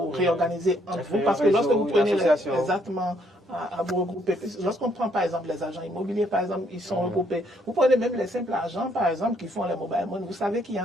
réorganiser entre vous? Parce que réseau, lorsque vous une prenez association. exactement à vous regrouper, lorsqu'on prend par exemple les agents immobiliers, par exemple, ils sont regroupés. Vous prenez même les simples agents, par exemple, qui font les mobile money. Vous savez qu'il y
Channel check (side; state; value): both; normal; correlation 0.69